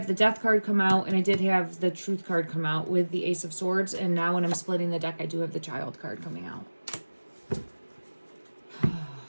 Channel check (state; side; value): inverted; both; correlation -1.00